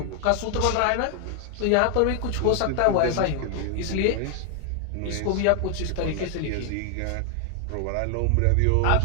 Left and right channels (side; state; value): both; different; correlation 0.00